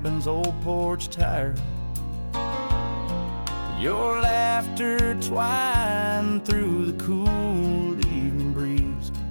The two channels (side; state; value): both; inverted; correlation -1.00